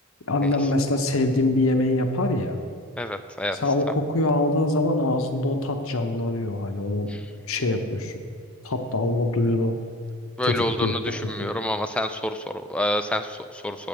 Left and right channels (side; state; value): both; normal; correlation 0.37